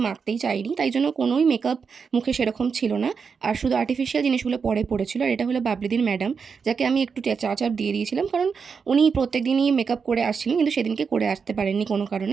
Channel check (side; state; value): left; quieter; 5.8 dB